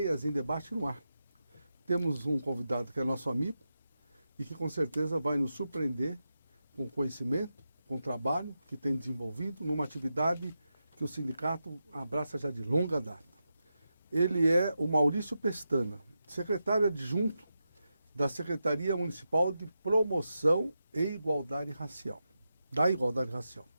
em debate no ar. Temos um convidado que é nosso amigo e que com certeza vai nos surpreender com conhecimento, com trabalho que tem desenvolvido numa atividade que o sindicato abraça já de longa data. Ele é o Maurício Pestana, secretário adjunto da Secretaria Municipal de Promoção e Igualdade Racial, da Igualdade Racial.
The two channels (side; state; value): both; inverted; correlation -0.89